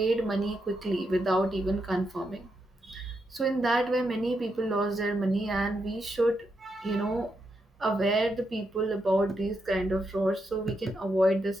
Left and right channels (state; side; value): normal; both; correlation 0.82